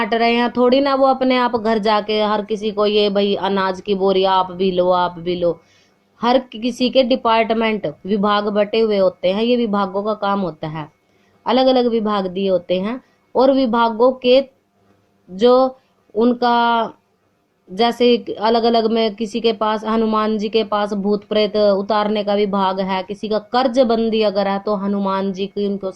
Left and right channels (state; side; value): identical; both; correlation 1.00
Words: रहे हैं, थोड़ी ना वो अपने आप घर जाके हर किसी को ये भाई अनाज की बोरी आप भी लो, आप भी लो। हर किसी के डिपार्टमेंट, विभाग बटे हुए होते हैं, ये विभागों का काम होता है, अलग अलग विभाग दिए होते हैं। और विभागों के जो उनका, जैसे अलग अलग में किसी के पास, हनुमान जी के पास भूत प्रेत उतारने का विभाग है, किसी का कर्ज बंदी अगर है तो हनुमान जी की उनको